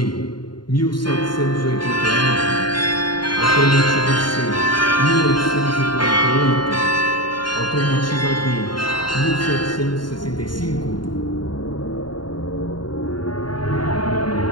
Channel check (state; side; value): late; right; 0.71 ms